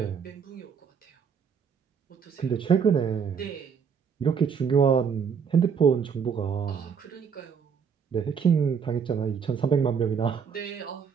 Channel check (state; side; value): quieter; left; 6.7 dB